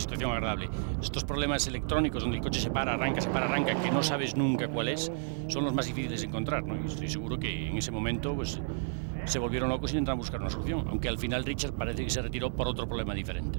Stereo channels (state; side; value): silent; left; digital silence